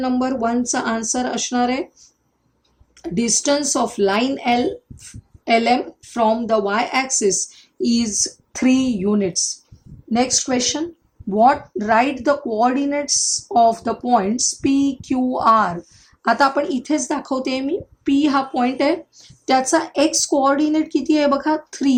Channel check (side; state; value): both; identical; correlation 1.00